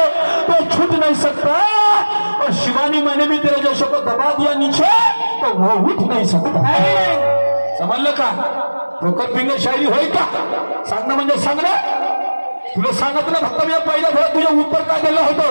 तो छूट नहीं सकता, और शिवानी मैंने भी तेरे जैसे को दबा दिया नीचे तो वो उठ नहीं सकता। समजलं का? फोकट फिंगर शायरी होय का? सांगणं म्हणजे सांगणं, तुला सांगत ना फक्त मी पहिल्या भरात तुझ्या उत्तर काय दिलं होतं,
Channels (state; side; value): inverted; both; correlation -1.00